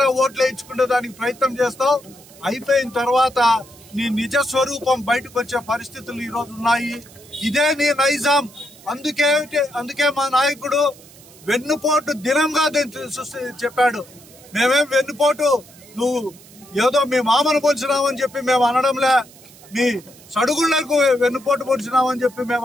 ఓట్లు వేయించుకునే దానికి ప్రయత్నం చేస్తావు. అయిపోయిన తర్వాత నీ నిజ స్వరూపం బయటకు వచ్చే పరిస్థితులు ఈ రోజు ఉన్నాయి. ఇదే నీ నైజాం. అందుకే మా నాయకుడు వెన్నుపోటు దినంగా చెప్పాడు. మేమేం వెన్నుపోటు నువ్వు ఏదో మీ మామను పొడిచినామని చెప్పి మేము అనడంలే, మీ సడుగుళ్లకు వెన్నుపోటు పొడిచినామని చెప్పి మేము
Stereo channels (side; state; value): right; noise; hiss, 23 dB below the sound